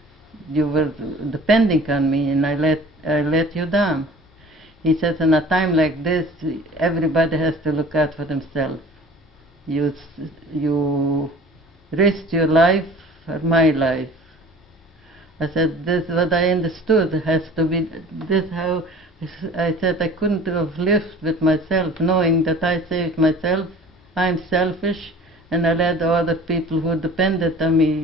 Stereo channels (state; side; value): normal; both; correlation 0.45